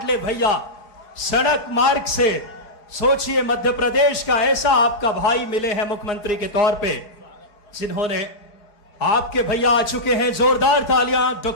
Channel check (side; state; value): right; late; 4.5 ms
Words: भैया सड़क मार्ग से। सोचिए, मध्य प्रदेश का ऐसा आपका भाई मिले हैं मुख्यमंत्री के तौर पे, जिन्होंने आपके भैया आ चुके हैं। जोरदार तालियां